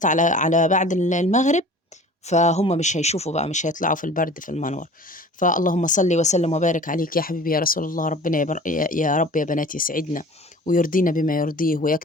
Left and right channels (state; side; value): normal; both; correlation 0.43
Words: على بعد المغرب، فهم مش هيشوفوا بقى، مش هيطلعوا في البرد في المنور. فاللهم صل وسلم وبارك عليك يا حبيبي يا رسول الله. ربنا يا رب يا بنات يسعدنا ويرضينا بما يرضيه،